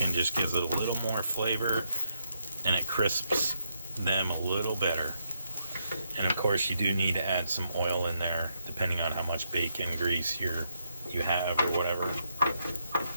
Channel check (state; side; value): inverted; both; correlation -0.79